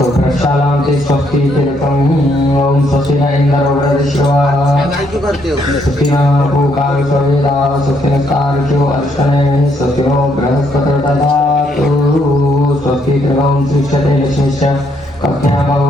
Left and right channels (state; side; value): normal; both; correlation 0.72